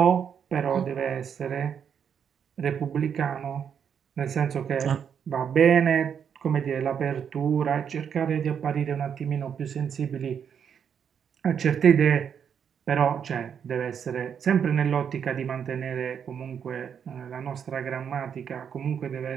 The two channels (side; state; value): left; quieter; 7.7 dB